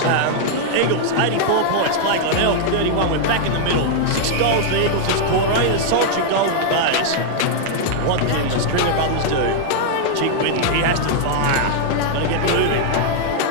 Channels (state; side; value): different; both; correlation -0.01